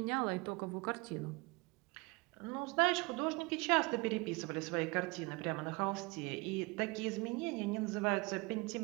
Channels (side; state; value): left; quieter; 26.3 dB